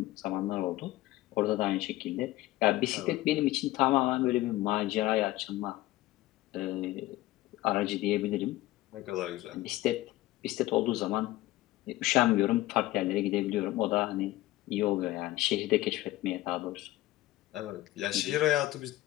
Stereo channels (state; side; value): quieter; right; 16.9 dB